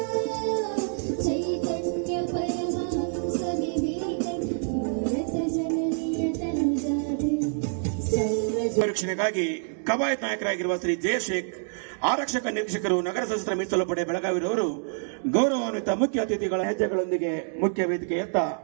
ಚೈತನ್ಯ ಪರಮಹಂಸ ವಿವೇಕಾನಂದ ಭಾರತ ಜನನಿಯ ತಂಡಾದೆ ರಕ್ಷಣೆಗಾಗಿ ಕವಾಯತ್ ನಾಯಕರಾಗಿರುವ ಶ್ರೀ ಜಯಶೇಖ್ ಆರಕ್ಷಕ ನಿರೀಕ್ಷಕರು ನಗರ ಸಶಸ್ತ್ರ ಮೀಸಲು ಪಡೆ ಬೆಳಗಾವಿರವರು ಗೌರವಾನ್ವಿತ ಮುಖ್ಯ ಅತಿಥಿಗಳ ಹೆಜ್ಜೆಗಳೊಂದಿಗೆ ಮುಖ್ಯ ವೇದಿಕೆಯತ್ತ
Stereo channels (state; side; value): silent; left; digital silence